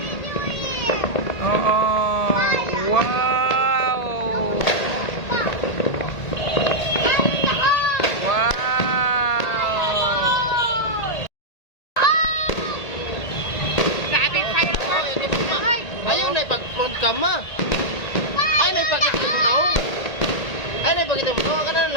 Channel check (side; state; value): right; late; 1.8 ms